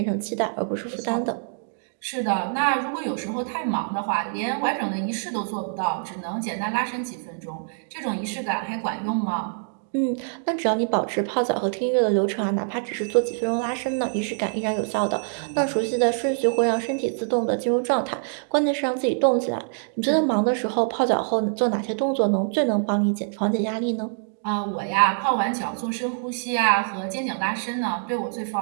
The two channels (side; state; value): left; silent; digital silence